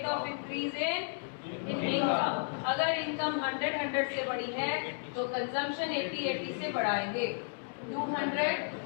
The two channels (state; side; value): silent; right; digital silence